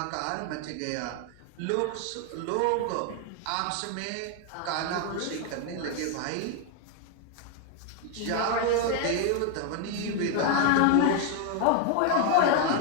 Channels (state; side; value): different; both; correlation 0.01